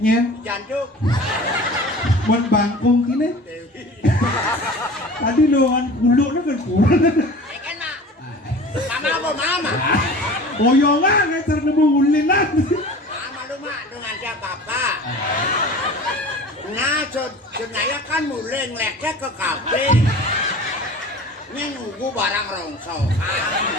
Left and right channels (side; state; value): both; normal; correlation 0.40